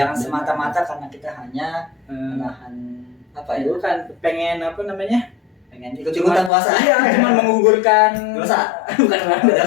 semata-mata karena kita hanya Eh, menahan apa ya? bukan pengen apa namanya? Pengen ikut-ikutan puasa. Iya, cuma menggugurkan Dosa. bukan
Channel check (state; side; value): drops out; right; at 6.5 s